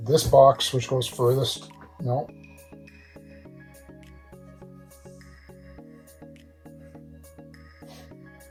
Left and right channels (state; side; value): identical; both; correlation 1.00